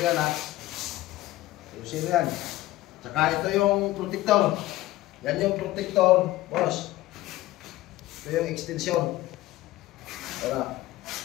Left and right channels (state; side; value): quieter; right; 16.9 dB